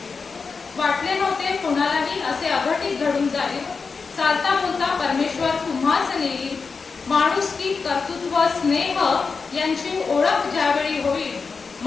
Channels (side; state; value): right; quieter; 4.9 dB